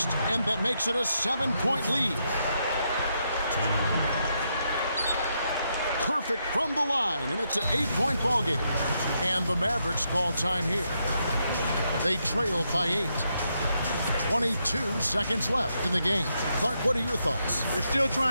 and that makes it a 7-point lead. Perfect from the line, and it's an 8-point ball game. And the Mavericks call time here. They trail by 8. 22 seconds left in the game. Clark, what are your thoughts? They're still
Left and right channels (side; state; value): both; inverted; correlation -0.80